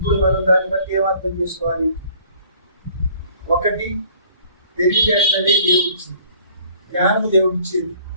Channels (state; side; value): inverted; both; correlation -0.55